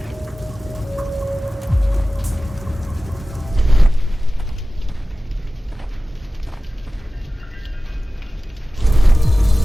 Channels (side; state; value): both; normal; correlation 0.96